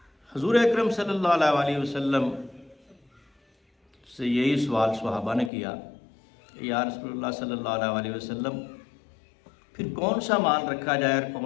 حضور اکرم صلی اللہ علیہ وسلم سے یہی سوال صحابہ نے کیا کہ یا رسول اللہ صلی اللہ علیہ وسلم پھر کون سا مال رکھا جائے اور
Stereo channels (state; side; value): drops out; right; at 5.5 s